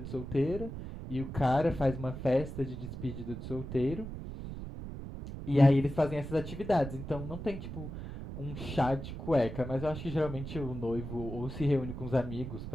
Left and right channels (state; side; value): noise; right; rumble, 8 dB below the sound